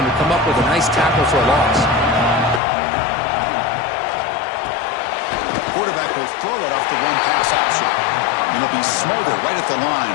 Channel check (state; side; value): drops out; right; at 2.6 s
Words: to come up with a nice tackle for a loss. Quarterback will throw it off the one pass option. And it'll be smothered right at the line